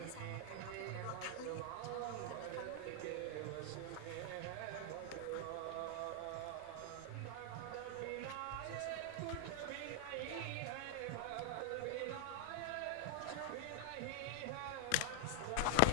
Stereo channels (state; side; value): different; both; correlation 0.00